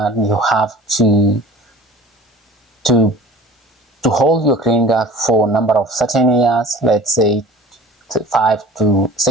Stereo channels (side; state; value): both; normal; correlation 0.44